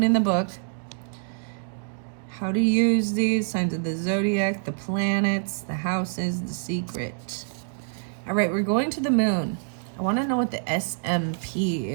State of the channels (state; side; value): silent; left; digital silence